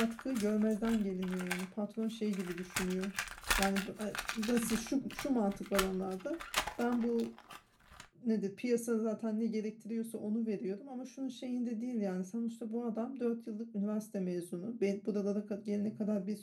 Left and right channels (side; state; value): both; identical; correlation 1.00